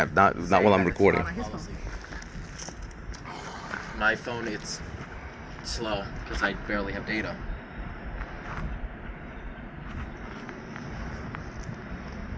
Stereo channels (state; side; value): identical; both; correlation 1.00